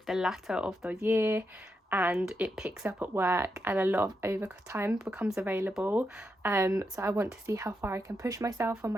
the latter of the year and it picks up at work and a lot of overtime becomes available. So I want to see how far I can push myself on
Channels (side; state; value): both; normal; correlation 0.84